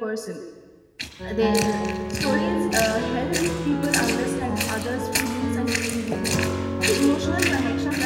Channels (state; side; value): identical; both; correlation 1.00